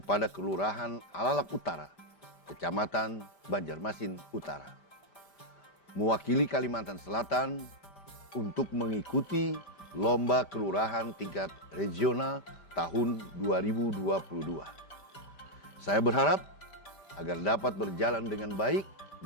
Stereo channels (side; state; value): right; late; 5.1 ms